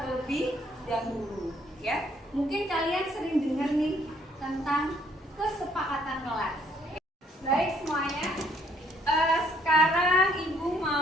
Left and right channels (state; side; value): normal; both; correlation 0.65